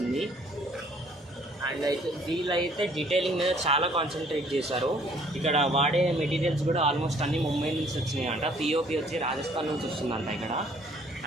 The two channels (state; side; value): normal; both; correlation 0.59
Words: అండ్ అయితే వీళ్ళైతే డీటెయిలింగ్ మీద చాలా కాన్సన్ట్రేట్ చేశారు। ఇక్కడ వాడే మెటీరియల్స్ కూడా ఆల్మోస్ట్ అన్నీ ముంబై నుంచి వచ్చినాయి అంట, పిఓపి వచ్చి రాజస్థాన్ నుంచి వస్తుందంట ఇక్కడ।